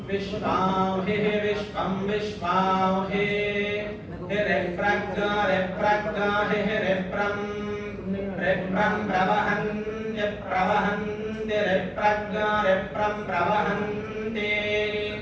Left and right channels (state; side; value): identical; both; correlation 1.00